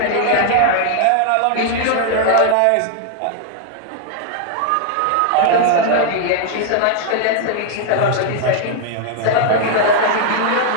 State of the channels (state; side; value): different; both; correlation 0.00